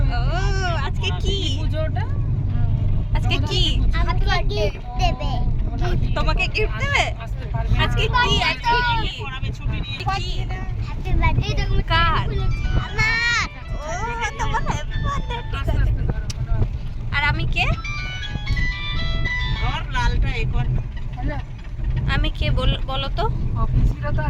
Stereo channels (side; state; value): both; identical; correlation 1.00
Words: ও আজকে কি পুজোটা? আজকে কি তোমাকে গিফট দেবে? আজকে কি? আজকে কি? কার? তোমার হ্যাপি বার্থডে। ঠিক আছে। আর আমি কে? আমি কে বলো তো? অফিসিরা তো